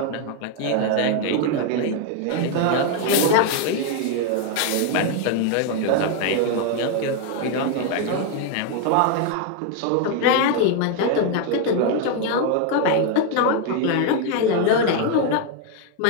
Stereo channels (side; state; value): both; different; correlation 0.01